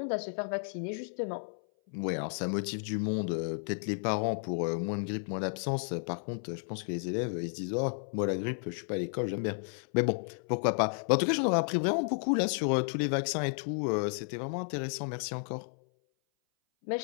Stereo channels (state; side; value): silent; right; 56 dB below the other